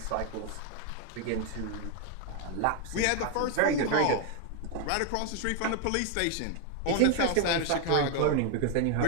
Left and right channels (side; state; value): both; different; correlation 0.01